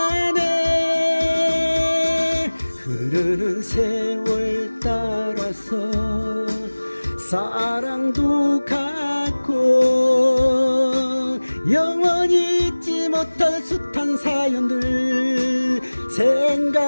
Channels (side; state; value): both; inverted; correlation -1.00